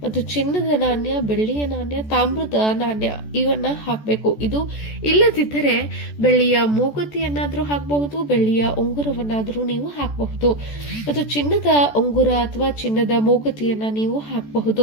ಮತ್ತು ಚಿನ್ನದ ನಾಣ್ಯ, ಬೆಳ್ಳಿಯ ನಾಣ್ಯ, ತಾಮ್ರದ ನಾಣ್ಯ ಇವನ್ನ ಹಾಕಬೇಕು. ಇದು ಇಲ್ಲದಿದ್ದರೆ ಬೆಳ್ಳಿಯ ಮೂಗುತಿಯನ್ನಾದ್ರೂ ಹಾಕಬಹುದು, ಬೆಳ್ಳಿಯ ಉಂಗುರವನ್ನಾದ್ರೂ ನೀವು ಹಾಕಬಹುದು ಮತ್ತು ಚಿನ್ನದ ಉಂಗುರ ಅಥವಾ ಚಿನ್ನದ ಮೂಗುತಿಯನ್ನ ನೀವು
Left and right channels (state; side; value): late; right; 14 ms